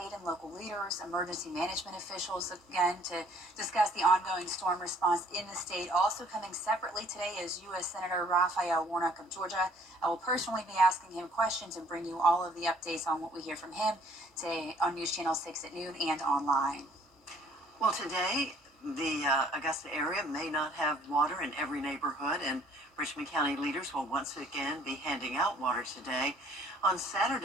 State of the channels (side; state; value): both; normal; correlation 0.59